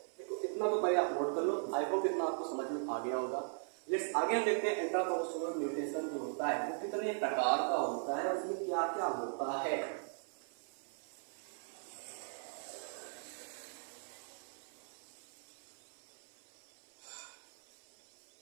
देखो इतना तो पहले आप नोट कर लो, आई होप इतना आपको समझ में आ गया होगा। लेट्स आगे हम देखते हैं इंट्रा क्रोमोसोमल म्यूटेशन जो होता है वो कितने प्रकार का होता है, उसमें क्या क्या होता है।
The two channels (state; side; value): silent; left; 52 dB below the other